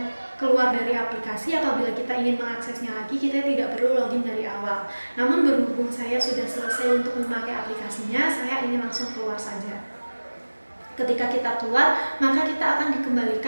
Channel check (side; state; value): both; inverted; correlation -1.00